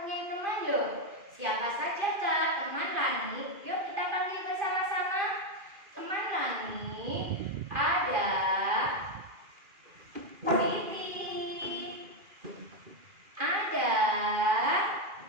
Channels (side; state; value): left; late; 2.4 ms